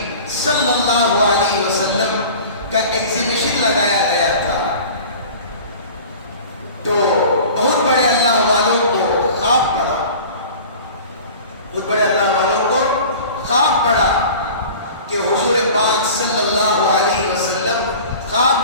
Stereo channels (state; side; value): inverted; both; correlation -0.40